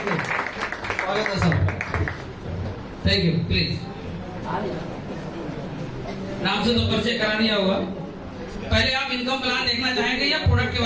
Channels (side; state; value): both; identical; correlation 1.00